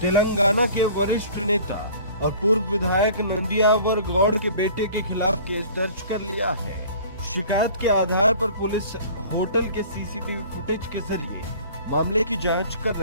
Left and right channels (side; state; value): both; inverted; correlation -0.47